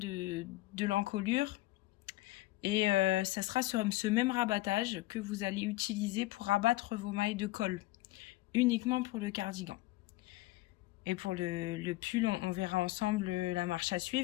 l'encolure. Et ça sera sur ce même rabattage que vous allez utiliser pour rabattre vos mailles de col, uniquement pour le cardigan. Et pour le pull, on verra ensemble la marche à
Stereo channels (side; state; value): right; quieter; 18.5 dB